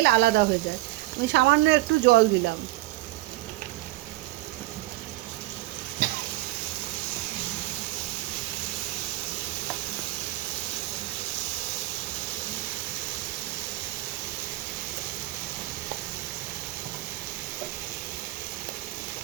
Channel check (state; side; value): quieter; left; 18.2 dB